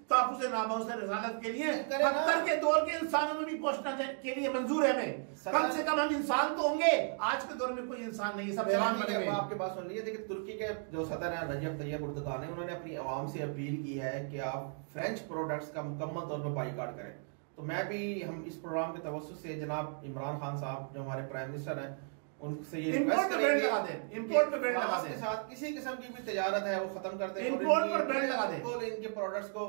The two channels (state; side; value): silent; left; 55 dB below the other